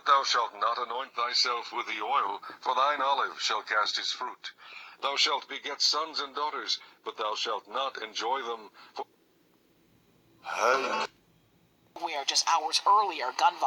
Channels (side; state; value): both; identical; correlation 1.00